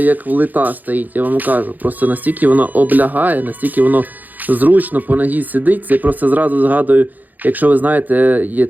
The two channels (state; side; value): late; left; 0.083 ms